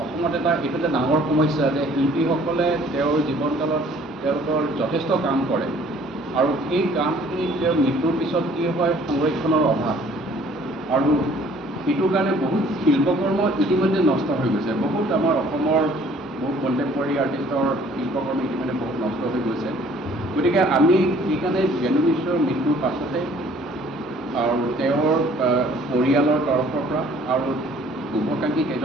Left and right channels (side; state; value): both; normal; correlation 0.56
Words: অসমত এইটো এটা ডাঙৰ সমস্যা যে শিল্পীসকলে তেওঁৰ জীৱনকালত তেওঁলোকৰ যথেষ্ট কাম কৰে আৰু সেই কামখিনি তেওঁৰ মৃত্যুৰ পিছত কি হয় সংৰক্ষণৰ অভাৱ, আৰু সেইটোৰ কাৰণে বহুত শিল্পকৰ্ম ইতিমধ্যে নষ্ট হৈ গৈছে। বহুত আমাৰ অসমৰ বহুত কণ্টেম্পৰাৰী আৰ্টিষ্টৰ শিল্পকৰ্ম ইতিমধ্যে বহুত নষ্ট হৈ গৈছে। গতিকে আমি সেইকাৰণে বেনু মিশ্ৰৰ মৃত্যুৰ পাছতে আৰু তেওঁৰ পৰিয়ালৰ তৰফৰ পৰা আৰু শুভাকাংক্ষী